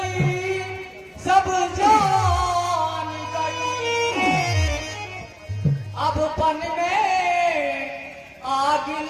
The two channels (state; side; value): identical; both; correlation 1.00